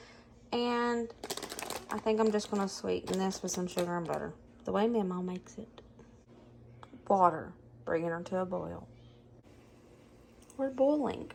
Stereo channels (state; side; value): identical; both; correlation 1.00